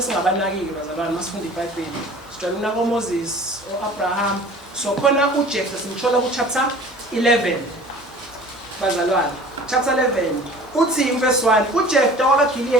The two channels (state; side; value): normal; both; correlation 0.45